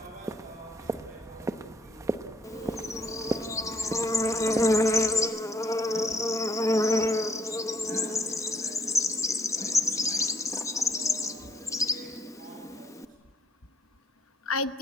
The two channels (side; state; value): both; normal; correlation 0.64